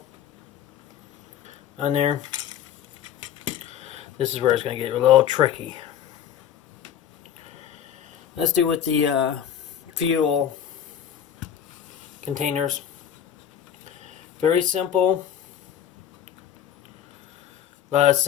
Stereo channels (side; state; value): right; quieter; 9.5 dB